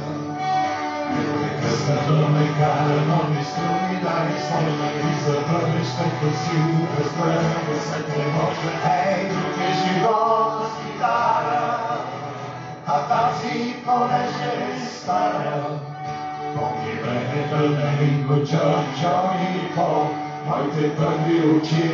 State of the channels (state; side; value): identical; both; correlation 1.00